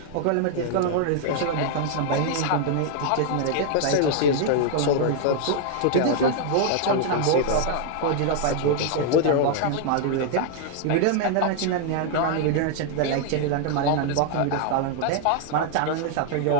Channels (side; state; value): both; different; correlation 0.00